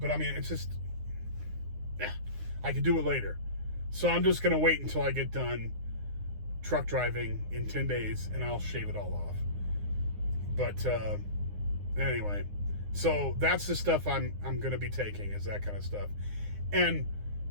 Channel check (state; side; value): late; left; 9.7 ms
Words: I mean, it's just, I could do it later. So I'm just gonna wait until I get done truck driving in 10 days, and I'll shave it all off. But anyway, so that's the stuff I'm gonna be taking, is that kind of stuff. And